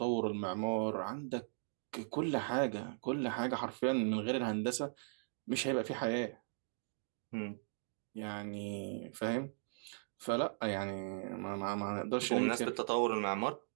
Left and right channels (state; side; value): silent; left; digital silence